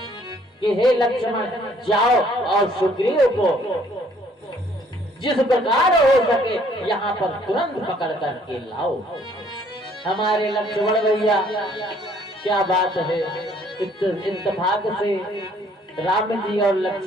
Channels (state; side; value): normal; both; correlation 0.61